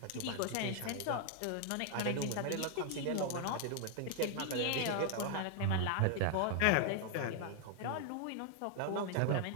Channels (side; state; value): both; different; correlation 0.00